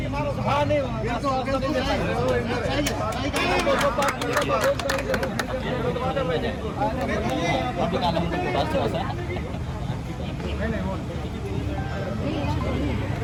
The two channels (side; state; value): both; identical; correlation 1.00